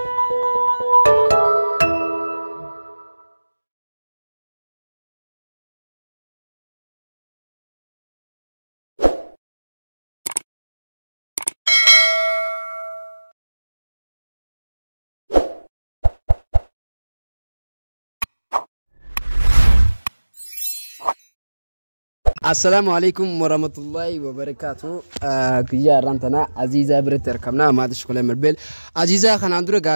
السلام عليكم ورحمة الله وبركاته. كيا رانتنا عزيزة بريت ركبنا ما تشكله مربل عزيزة خنا عندنا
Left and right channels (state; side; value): inverted; both; correlation -1.00